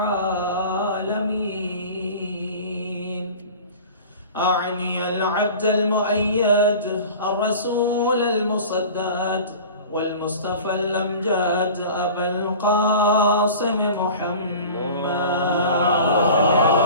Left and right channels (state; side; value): inverted; both; correlation -0.39